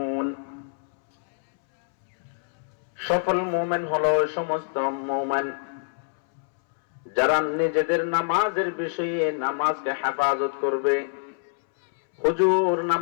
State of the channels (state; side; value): silent; right; 62 dB below the other